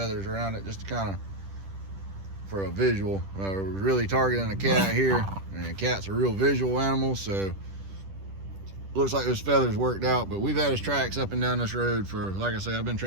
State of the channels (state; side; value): late; left; 10 ms